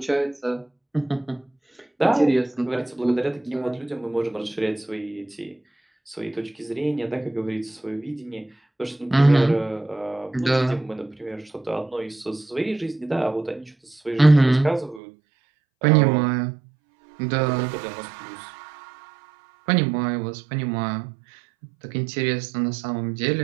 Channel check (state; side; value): drops out; left; at 15.0 s